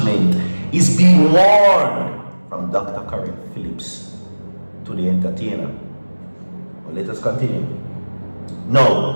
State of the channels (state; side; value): inverted; both; correlation -1.00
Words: is being warned from Dr. Karen Phillips to the entertainer. Well, let us continue.